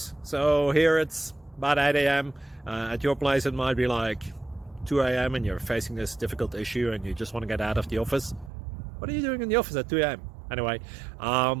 So here it's about 8 a.m. At your place it might be like 2 a.m. and you're facing this difficult issue and you just want to get out of the office. What are you doing in the office at 2 a.m.? Anyway,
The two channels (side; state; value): left; drops out; at 8.5 s